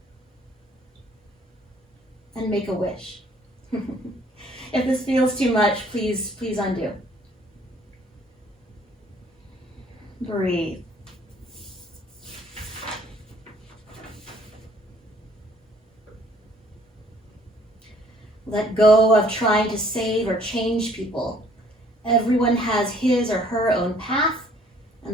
And make a wish. If this feels too much, please undo. Breathe. Let go of trying to save or change people. Everyone has his or her own path,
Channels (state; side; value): normal; both; correlation 0.60